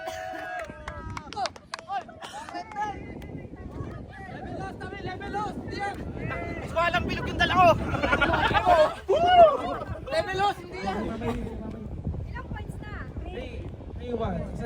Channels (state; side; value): identical; both; correlation 1.00